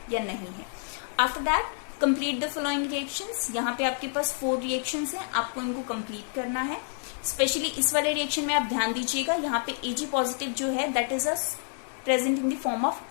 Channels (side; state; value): right; silent; 59 dB below the other